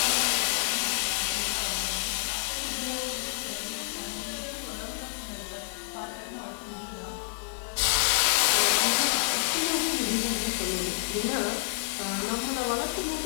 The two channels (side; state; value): right; silent; digital silence